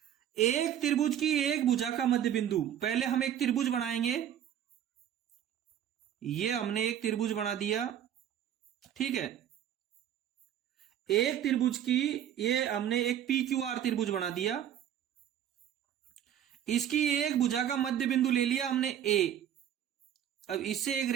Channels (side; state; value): left; quieter; 10.2 dB